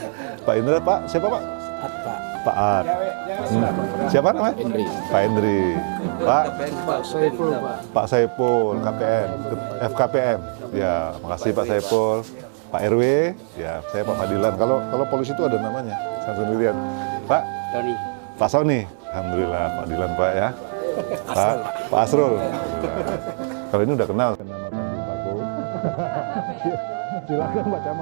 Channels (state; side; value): silent; left; digital silence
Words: Pak Indra, Pak siapa Pak? Pak At. Siapa namanya? Hendri. Pak Hendri. Pak Saiful Pak. Pak Saiful, KPN, FKPM. Ya, makasih Pak Saiful. Pak RW, ya saya Pak Fadilan. Kalau polisi itu ada namanya, saya sendirian. Pak Tony. Pak Sony. Alhamdulillah, Pak Fadilan Pak ya. Pak Asrul. Kalau ini udah kenal kan nama Tanjung Paku. Silakan Pak